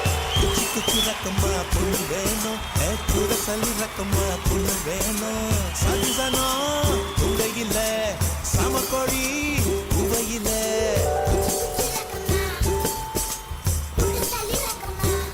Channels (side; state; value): both; identical; correlation 1.00